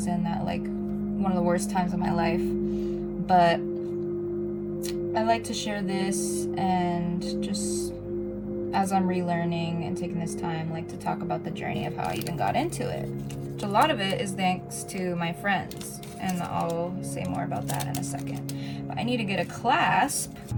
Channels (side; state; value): both; identical; correlation 1.00